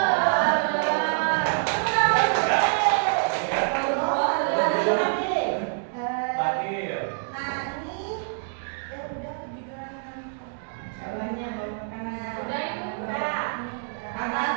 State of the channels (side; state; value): left; silent; digital silence